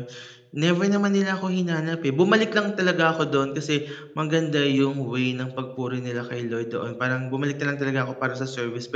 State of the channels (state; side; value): identical; both; correlation 1.00